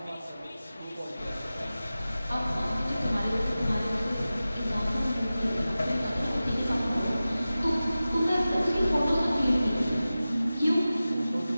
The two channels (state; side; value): inverted; both; correlation -0.96